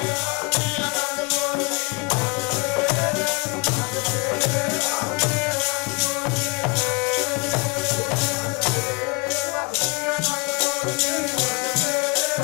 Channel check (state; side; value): quieter; right; 30.2 dB